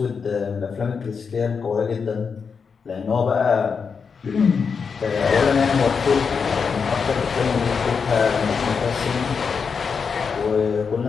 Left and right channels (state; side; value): quieter; right; 5.8 dB